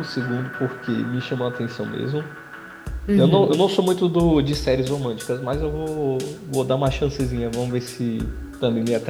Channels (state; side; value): identical; both; correlation 1.00